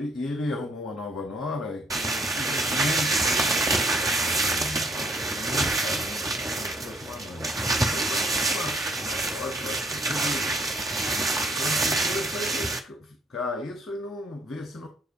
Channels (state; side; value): normal; both; correlation 0.64